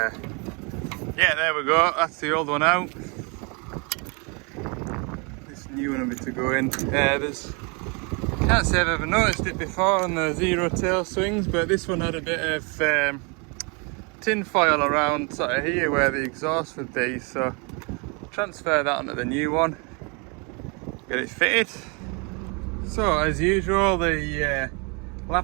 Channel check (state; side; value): quieter; left; 32.3 dB